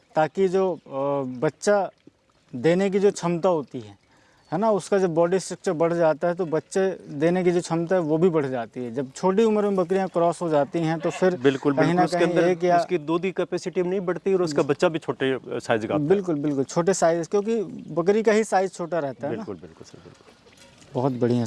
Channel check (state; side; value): identical; both; correlation 1.00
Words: ताकि जो बच्चा देने की जो क्षमता होती है ना, उसका जब बॉडी स्ट्रक्चर बढ़ जाता है तो बच्चे देने की जो क्षमता है वो भी बढ़ जाती है। जब छोटी उम्र में बकरियां क्रॉस हो जाती हैं तो फिर बिल्कुल कहीं ना कहीं एक या उसकी दूध की कैपेसिटी नहीं बढ़ती और उसका बच्चा भी छोटे साइज का आता है। बिल्कुल बिल्कुल छोटे साइज, क्योंकि बकरी का ही साइज छोटा रहता है ना। बिल्कुल बिल्कुल सर, बिल्कुल। बहुत बढ़िया